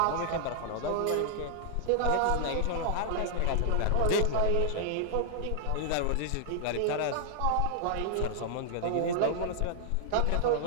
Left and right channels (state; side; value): different; both; correlation -0.01